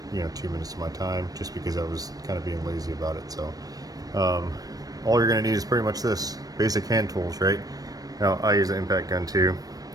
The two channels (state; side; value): late; left; 0.18 ms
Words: 2 minutes to my time just because I was kind of being lazy about it. So all you're going to need is pretty much this basic hand tools, right? Now I use an impact gun too